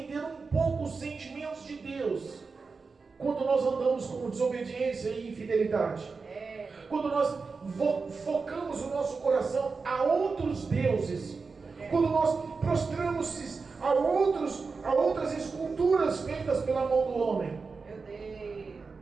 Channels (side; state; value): left; quieter; 4.6 dB